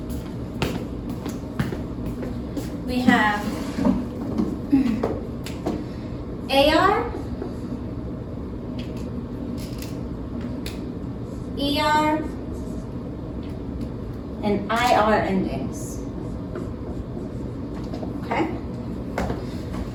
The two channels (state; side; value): identical; both; correlation 1.00